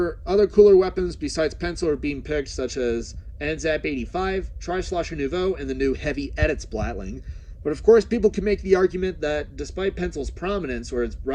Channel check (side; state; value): both; identical; correlation 1.00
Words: other cooler weapons besides pencil are being picked, such as NZAP 85, Tri-Slosher Nouveau, and the new Heavy Edit Splatling. But of course, people can make the argument that despite pencil's prominence, or its